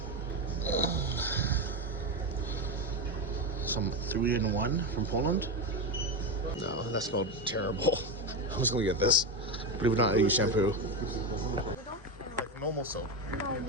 some 3-in-1 from Poland. No, that smelled terrible. I was gonna get this. Believe it or not, I use shampoo. Like normal soap.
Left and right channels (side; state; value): both; normal; correlation 0.14